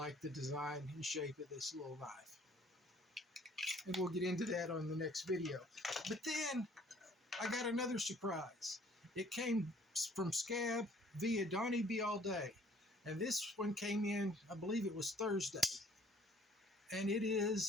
the design and shape of this little knife. And we'll get into that on the next video. But then, I got another surprise. It came from Scab via Donnie Be All Day. And this one came in, I believe it was Thursday. And it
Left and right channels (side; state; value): both; normal; correlation 0.57